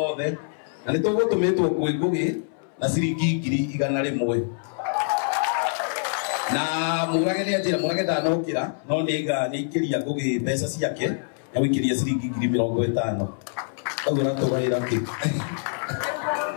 othe na nĩ tũgũtũmĩtwo kwĩ Ngũgĩ na ciringi 100 na murage ni ajira murage ndanokira no niga nikiria Ngũgĩ mbeca ciake na wikiria ciringi 50,000 koguo natugaira ki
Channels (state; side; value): silent; right; 62 dB below the other